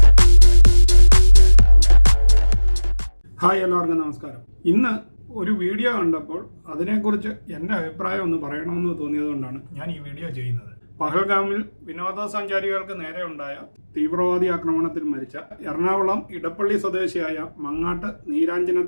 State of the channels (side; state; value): both; inverted; correlation -1.00